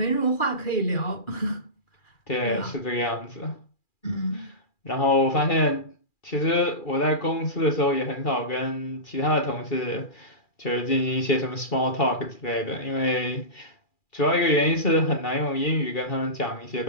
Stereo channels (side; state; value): right; late; 2.4 ms